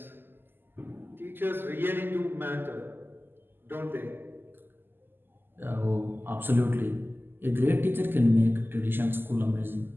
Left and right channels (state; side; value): late; left; 0.097 ms